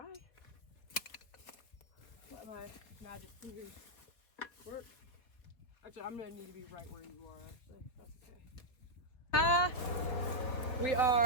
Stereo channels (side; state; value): right; late; 3.8 ms